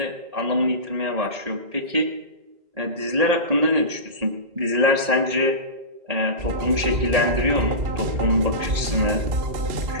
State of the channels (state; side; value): late; left; 1.8 ms